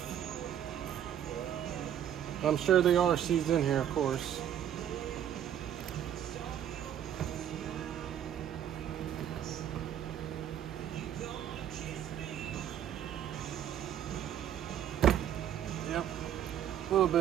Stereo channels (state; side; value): quieter; left; 10.2 dB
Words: I'm sure they are seized in here, of course. Yep, a little